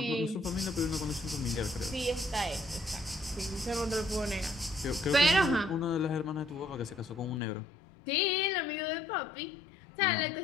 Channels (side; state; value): right; drops out; at 7.4 s